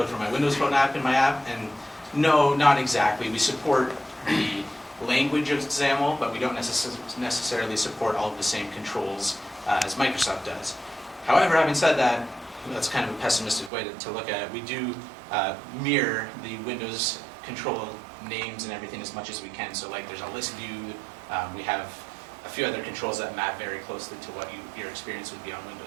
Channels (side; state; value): left; drops out; at 13.7 s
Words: for my Windows Phone app in my app? And no, not exactly. We support the language of XAML, but we don't necessarily support all of the same controls as Microsoft does. However, having said that, that's kind of a pessimistic way to look at it. We do mirror the Windows control names and everything as much as we can. So like there's a list view, we have a few other controls that map very closely to what your experience would be on